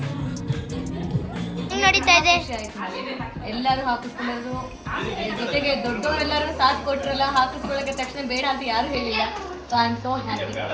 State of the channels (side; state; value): both; identical; correlation 1.00